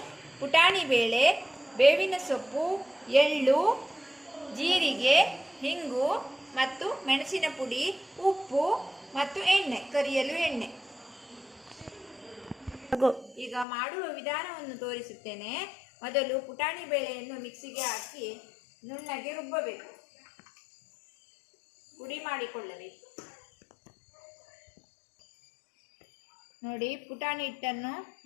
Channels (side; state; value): right; drops out; at 13.7 s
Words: ಪುಟಾಣಿ ಬೇಳೆ, ಬೇವಿನ ಸೊಪ್ಪು, ಎಳ್ಳು, ಜೀರಿಗೆ, ಹಿಂಗು ಮತ್ತು ಮೆಣಸಿನ ಪುಡಿ, ಉಪ್ಪು ಮತ್ತು ಎಣ್ಣೆ, ಕರಿಯಲು ಎಣ್ಣೆ. ಈಗ ಮಾಡುವ ವಿಧಾನವನ್ನು ತೋರಿಸುತ್ತೇನೆ. ಮೊದಲು ಪುಟಾಣಿ ಬೇಳೆಯನ್ನು ಮಿಕ್ಸಿಗೆ ಹಾಕಿ ನುಣ್ಣಗೆ ರುಬ್ಬಬೇಕು, ಪುಡಿ ಮಾಡಿಕೊಳ್ಳಬೇಕು. ನೋಡಿ, ಪುಟಾಣಿ ಹಿಟ್ಟನ್ನು